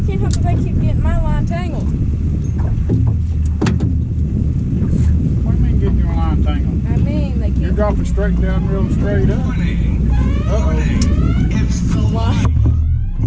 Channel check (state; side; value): identical; both; correlation 1.00